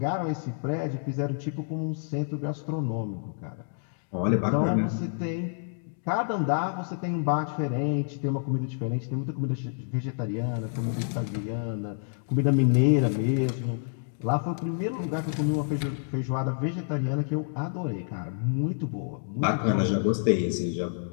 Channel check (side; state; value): right; silent; digital silence